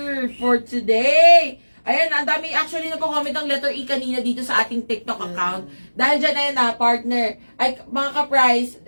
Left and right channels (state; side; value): inverted; both; correlation -1.00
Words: for today. Ayan, ang dami actually nagko-comment ng letter E kanina dito sa ating TikTok account. Dahil dyan, ayan na, partner. Ay, mga ka-price,